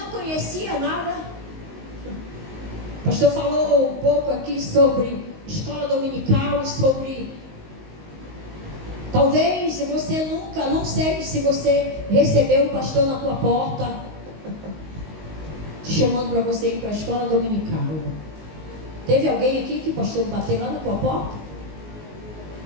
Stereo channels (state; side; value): late; left; 19 ms